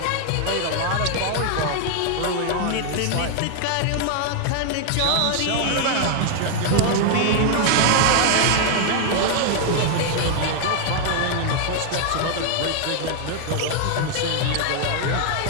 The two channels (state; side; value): different; both; correlation 0.00